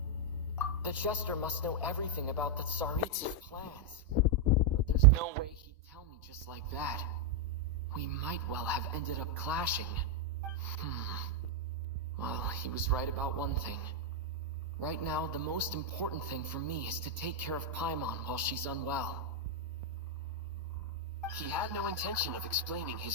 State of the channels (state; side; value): normal; both; correlation 0.00